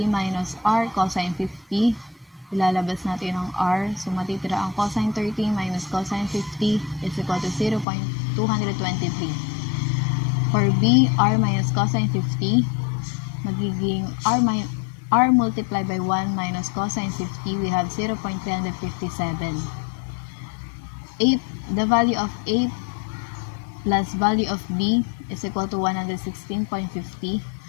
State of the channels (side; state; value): right; drops out; at 7.9 s